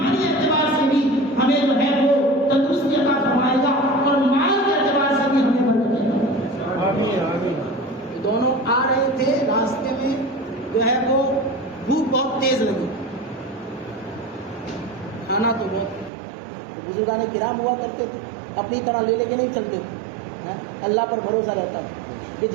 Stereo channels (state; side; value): drops out; left; at 16.1 s